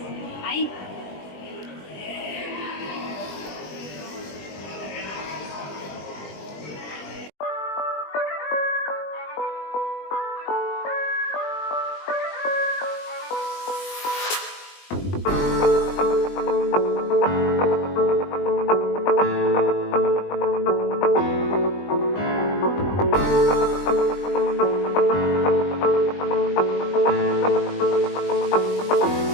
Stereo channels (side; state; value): right; late; 20 ms